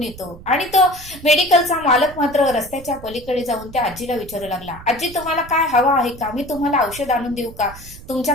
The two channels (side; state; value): right; noise; rumble, 17 dB below the sound